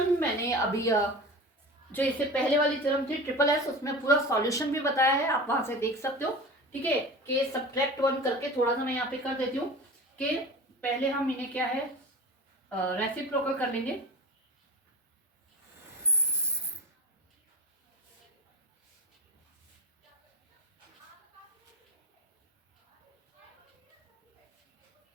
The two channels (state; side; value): normal; both; correlation 0.33